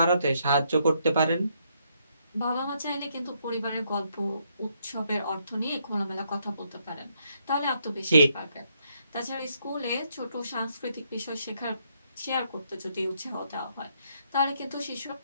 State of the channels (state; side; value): inverted; both; correlation -0.74